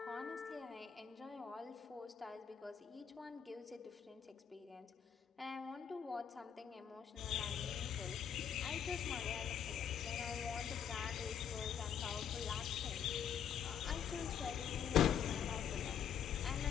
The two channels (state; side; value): quieter; right; 8.3 dB